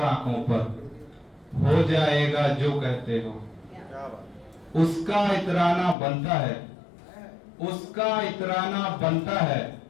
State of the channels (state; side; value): drops out; right; at 6.0 s